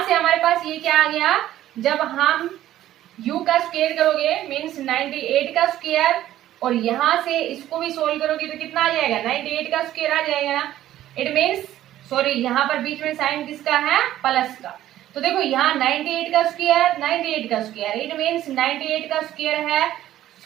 से हमारे पास ये क्या आ गया, जब हम u का स्क्वायर करोगे मीन्स 98 का स्क्वायर, और यहां से इसको भी सोल्व करोगे तो कितना आ जाएगा, 98 का स्क्वायर आ जाएगा ना। इट मीन्स सॉरी यहाँ पर बीच में साइन किसका है, प्लस का। तो देखो यहाँ 98 का स्क्वायर, 98 का स्क्वायर, इट मीन्स 98 का स्क्वायर है,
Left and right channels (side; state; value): left; quieter; 13.2 dB